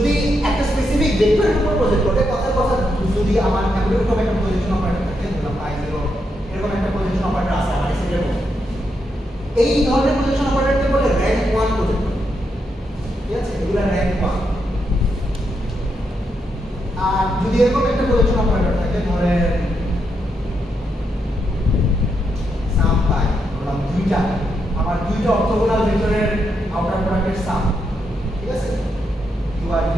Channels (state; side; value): normal; both; correlation 0.81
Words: একটা স্পেসিফিক ভেক্টরের উপর প্রজেক্ট করে কথার কথা যদি আমার এরকম একটা প্রজেকশন অপারেটর থাকে ধরলাম পাই 0 এরকম একটা প্রজেকশন অপারেটর আছে আমার সেটের মধ্যে এই ধরনের প্রজেকশন অপারেটরকে বলে র‍্যাঙ্ক 1 প্রজেক্টর ঠিক আছে এগুলো র‍্যাঙ্ক 1 আর যদি এরকম একটা প্রজেকশন অপারেটর থাকে ধরেন সাম পাই ধরলাম দুইটা আমার দুইটা অর্থোগোনাল ভেক্টরের আউটার প্রোডাক্টের সাম ঠিক আছে বা